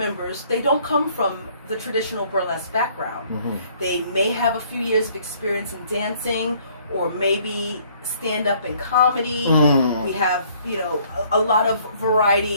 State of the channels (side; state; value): both; inverted; correlation -0.61